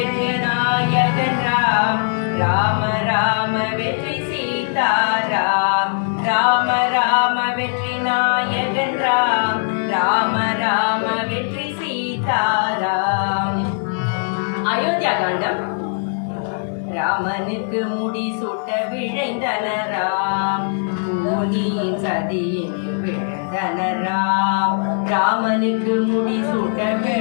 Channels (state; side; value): silent; right; digital silence